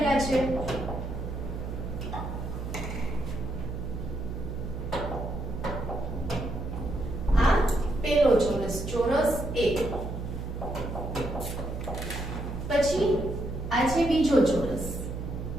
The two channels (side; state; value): right; noise; hum, 6 dB below the sound